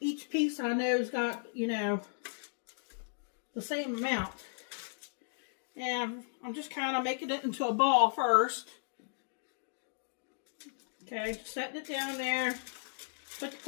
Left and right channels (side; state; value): right; silent; digital silence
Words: each piece I know's got, you know, the same amount. And I'm just kind of making it into a ball first. Okay, setting it down there. Put the